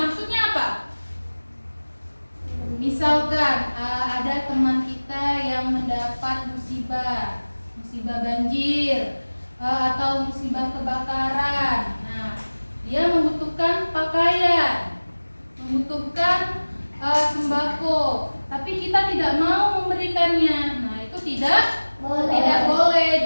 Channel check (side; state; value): both; inverted; correlation -1.00